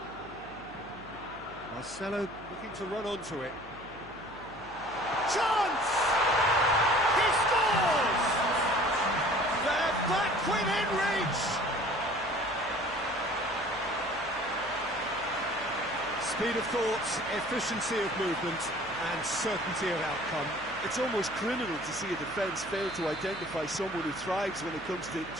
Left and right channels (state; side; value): noise; left; hum, 21 dB below the sound